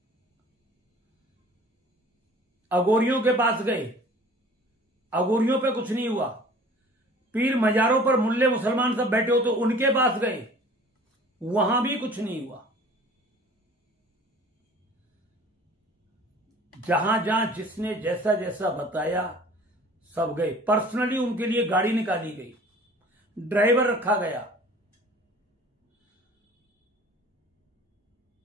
अघोरियों के पास गए, अघोरियों पे कुछ नहीं हुआ। पीर मजारों पर मुल्ले मुसलमान सब बैठे हो तो उनके पास गए, वहां भी कुछ नहीं हुआ। जहां जहां जिसने जैसा जैसा बताया, सब गए। पर्सनली उनके लिए गाड़ी निकाली गई, ड्राइवर रखा गया,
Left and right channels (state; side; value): normal; both; correlation 0.47